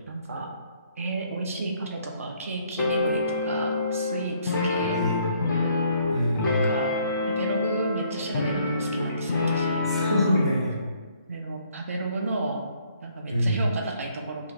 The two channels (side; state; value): both; inverted; correlation -0.65